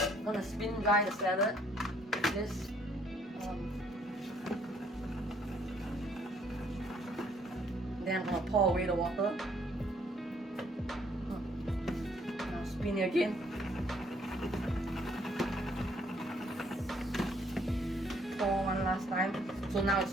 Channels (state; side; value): normal; both; correlation 0.65